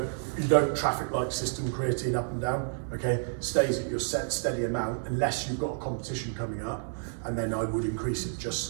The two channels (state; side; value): silent; left; digital silence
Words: you don't traffic light system creatine up and down. Okay, stays at your set steady amount unless you've got a competition coming up, and then I would increase it just